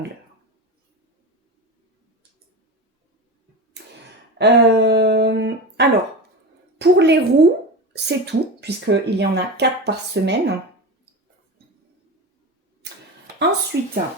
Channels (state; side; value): normal; both; correlation 0.24